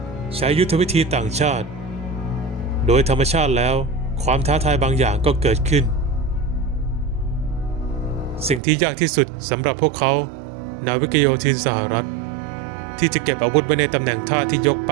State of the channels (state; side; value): drops out; left; at 8.6 s